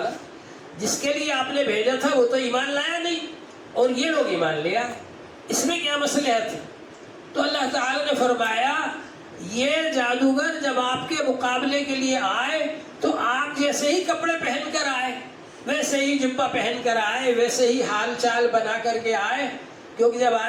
جس کے لیے آپ نے بھیجا تھا وہ تو ایمان لایا نہیں اور یہ لوگ ایمان لیا، اس میں کیا مصلحت ہے؟ تو اللہ تعالیٰ نے فرمایا یہ جادوگر جب آپ کے مقابلے کے لیے آئے تو آپ جیسے ہی کپڑے پہن کر آئے، ویسے ہی جبہ پہن کر آئے، ویسے ہی حال چال بنا کر کے آئے. کیونکہ جب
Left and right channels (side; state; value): both; identical; correlation 1.00